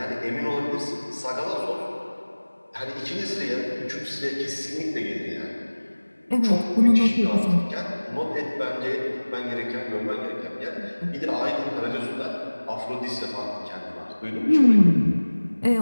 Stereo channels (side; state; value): both; inverted; correlation -1.00